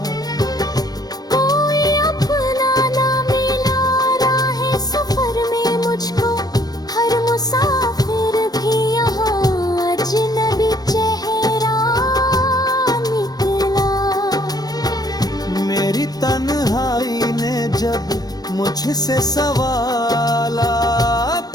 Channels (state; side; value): late; right; 0.19 ms